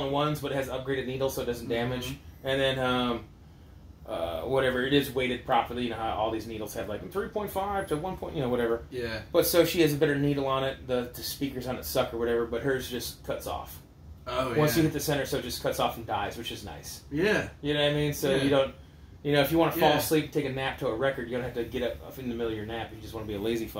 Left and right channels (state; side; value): identical; both; correlation 1.00